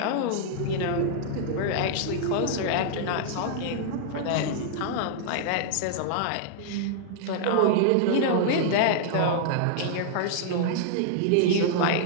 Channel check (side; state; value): both; different; correlation -0.01